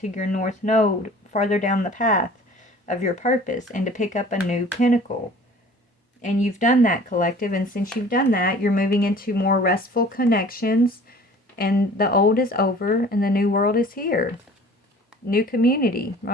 your north node, farther down the path of your purpose, and to pick up a new pinnacle. And you've done that, collective. And since you've done that, you're moving into more restful connections. And the old is over and the new world is here. New community,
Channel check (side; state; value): both; normal; correlation 0.47